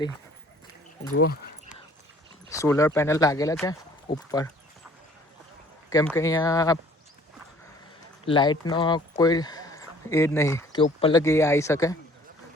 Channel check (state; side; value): normal; both; correlation 0.54